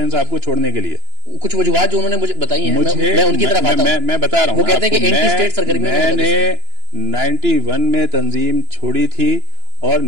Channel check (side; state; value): left; late; 2.9 ms